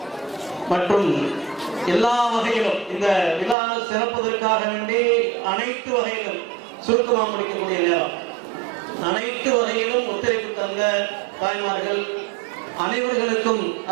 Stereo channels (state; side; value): drops out; left; at 3.6 s